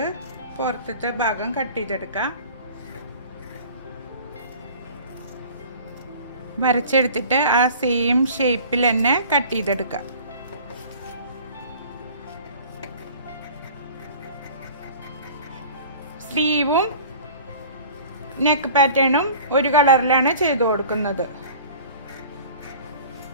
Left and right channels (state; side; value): inverted; both; correlation -0.44